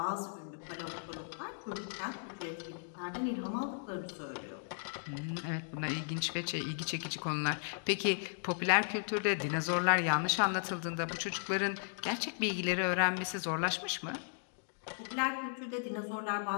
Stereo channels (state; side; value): silent; right; digital silence